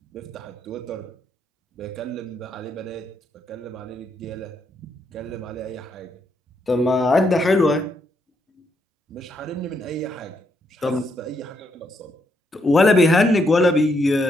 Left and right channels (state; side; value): normal; both; correlation 0.77